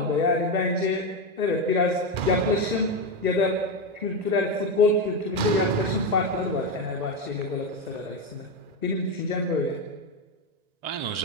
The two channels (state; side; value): late; left; 1.9 ms